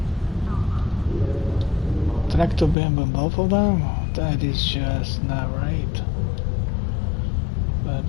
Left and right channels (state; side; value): drops out; right; at 2.8 s